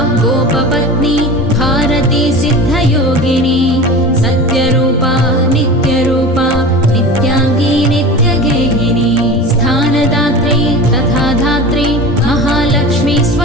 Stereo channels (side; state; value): both; normal; correlation 0.32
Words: गोपपत्नी भारती सिद्धयोगिनी सत्यरूपा नित्यरूपा नित्याङ्गी नित्यगेहिनी स्थानदात्री तथा धात्री महालक्ष्मी